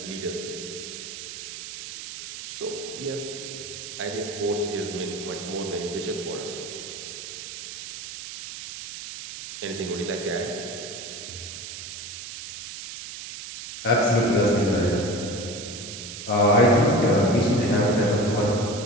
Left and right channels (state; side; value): noise; right; hiss, 10 dB below the sound